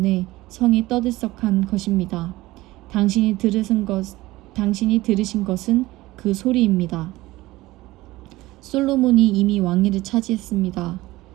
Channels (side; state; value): left; quieter; 18.5 dB